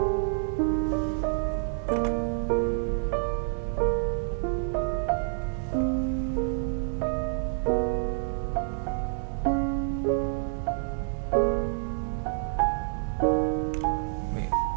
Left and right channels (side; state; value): left; silent; digital silence